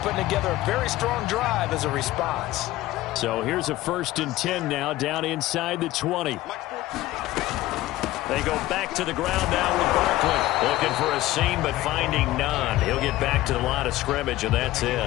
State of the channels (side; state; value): right; quieter; 16.5 dB